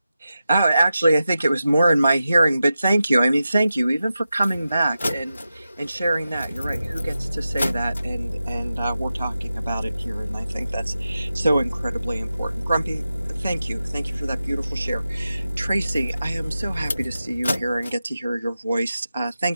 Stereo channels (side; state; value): both; inverted; correlation -0.92